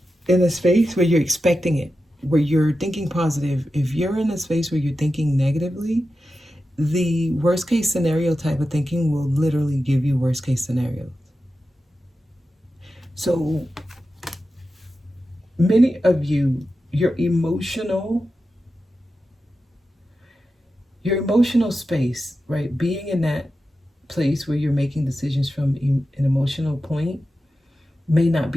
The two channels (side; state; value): both; normal; correlation 0.91